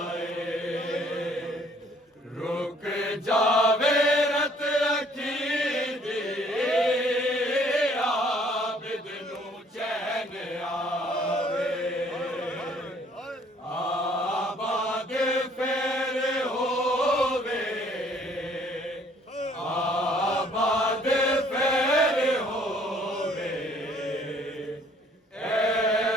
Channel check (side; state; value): both; normal; correlation 0.60